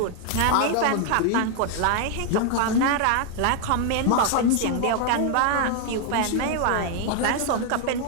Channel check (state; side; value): different; both; correlation 0.00